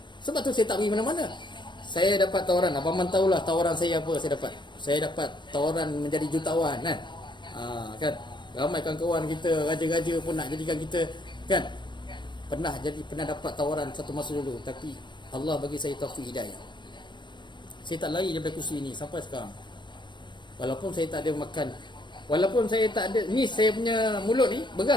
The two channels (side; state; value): right; late; 0.22 ms